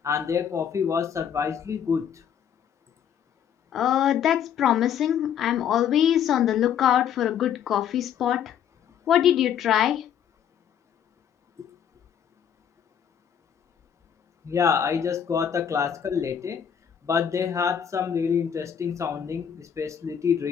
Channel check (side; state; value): right; quieter; 8.7 dB